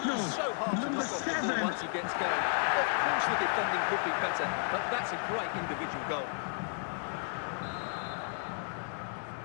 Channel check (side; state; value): right; silent; 56 dB below the other